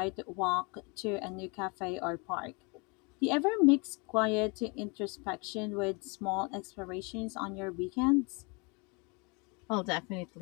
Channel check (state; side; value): quieter; right; 31.0 dB